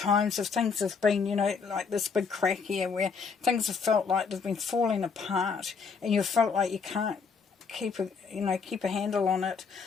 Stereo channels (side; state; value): right; quieter; 5.5 dB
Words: if things have been, like this big crack here where things have felt like they've been falling apart and you felt like you can't keep a handle on it,